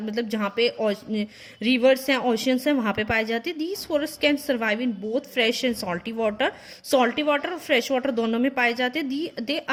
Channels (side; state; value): both; identical; correlation 1.00